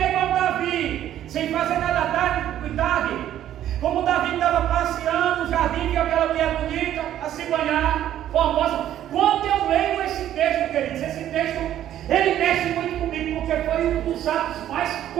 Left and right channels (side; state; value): left; quieter; 11.7 dB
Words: da tarde, como Davi estava passeando no jardim, viu aquela mulher bonita, a se banhar, formosa. Quando eu leio esse texto, queridos, esse texto, ele mexe muito comigo, porque foi um dos atos mais